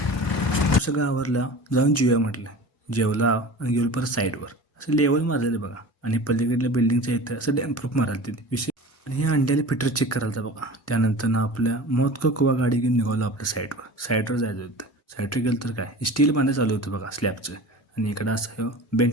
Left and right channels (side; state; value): both; normal; correlation 0.36